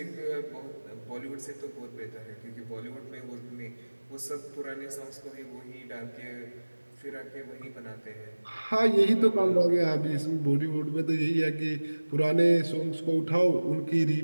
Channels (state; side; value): inverted; both; correlation -1.00